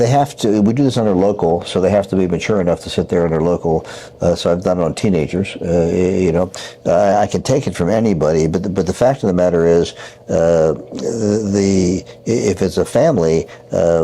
have to. We do this under local, so they have to be mature enough to sit there under local. So I've done it on teenagers. I can take it from anybody, but the fact of the matter is, if it's a family,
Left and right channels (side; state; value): both; identical; correlation 1.00